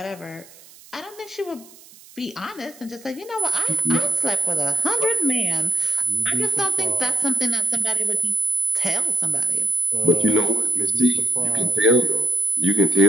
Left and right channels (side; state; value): right; noise; hiss, 23 dB below the sound